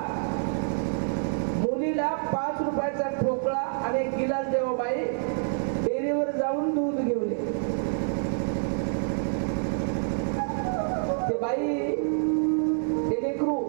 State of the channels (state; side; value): silent; left; digital silence